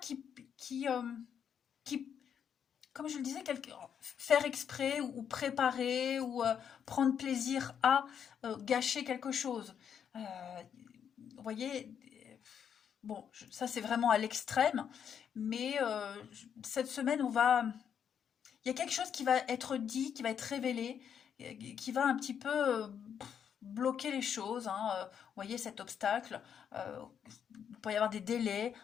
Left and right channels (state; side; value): quieter; right; 8.1 dB